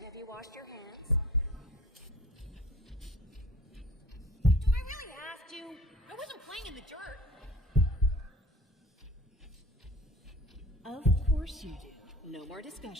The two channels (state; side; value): normal; both; correlation 0.46